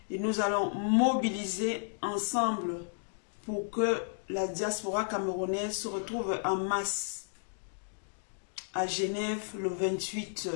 et nous allons mobiliser ensemble pour que la diaspora camerounaise se retrouve en masse à Genève le 28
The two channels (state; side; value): silent; right; digital silence